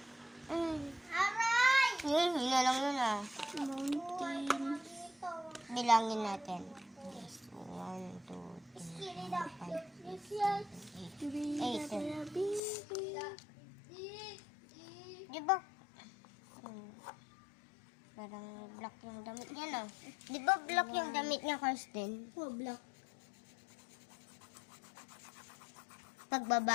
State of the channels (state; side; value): drops out; right; at 12.6 s